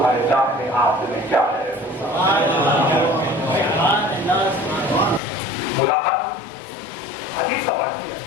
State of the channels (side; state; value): right; drops out; at 5.2 s